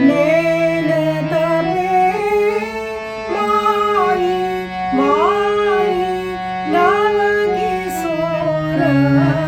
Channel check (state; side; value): identical; both; correlation 1.00